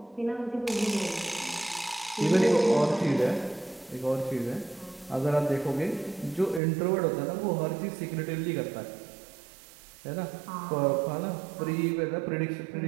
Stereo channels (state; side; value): drops out; left; at 6.6 s